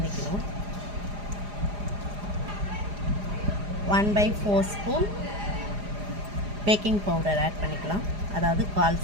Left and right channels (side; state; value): left; late; 4.9 ms